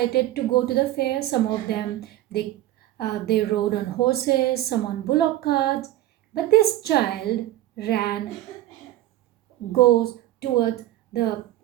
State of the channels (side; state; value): left; quieter; 14.7 dB